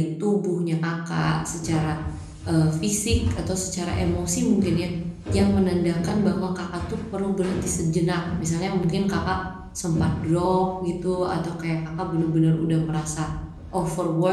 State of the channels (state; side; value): identical; both; correlation 1.00